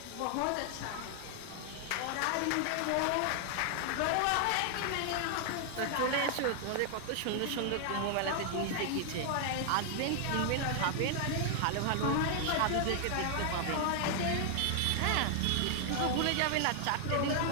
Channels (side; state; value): both; different; correlation 0.00